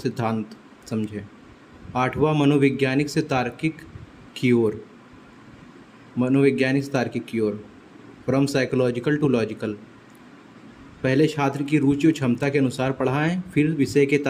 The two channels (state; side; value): identical; both; correlation 1.00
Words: समझें। आठवां, मनोवैज्ञानिक से तार्किक की ओर, मनोवैज्ञानिक से तार्किक की ओर, फ्रॉम साइकोलॉजिकल टू लॉजिकल, पहले छात्र की रुचि और क्षमता के अनुसार पढ़ाएं फिर विषय के